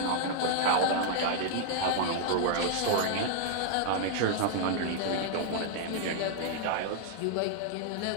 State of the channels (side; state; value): both; different; correlation -0.01